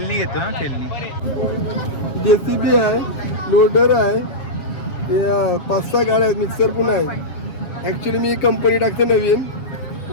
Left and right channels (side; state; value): right; late; 7.4 ms